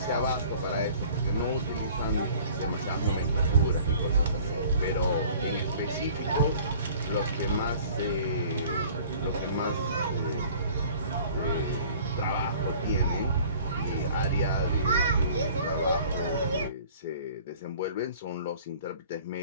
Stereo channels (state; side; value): inverted; both; correlation -0.49